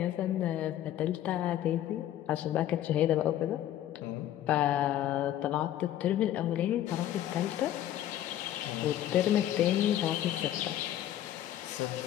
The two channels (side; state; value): right; quieter; 12.2 dB